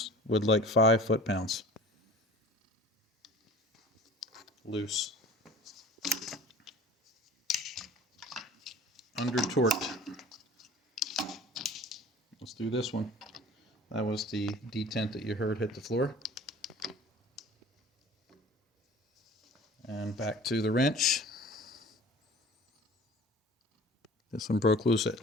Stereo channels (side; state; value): both; normal; correlation 0.44